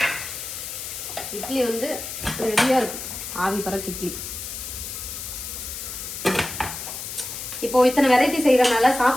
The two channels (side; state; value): left; noise; hiss, 8 dB below the sound